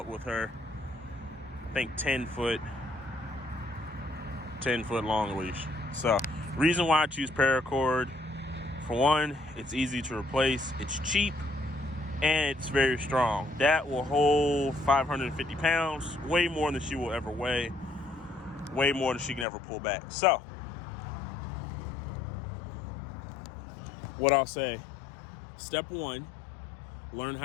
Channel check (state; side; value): drops out; right; at 19.5 s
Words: with her, I think 10-foot long leash. So reason why I choose paracord, for one, it's easy to replace, it's cheap, and it's very strong. That will hold 550 pounds, way more than she will ever weigh, way more than she can ever pull back. So what I'll say, step one, learn